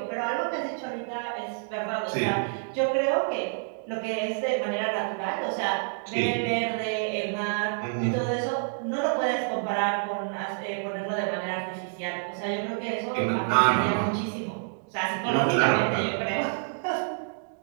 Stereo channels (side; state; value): left; silent; digital silence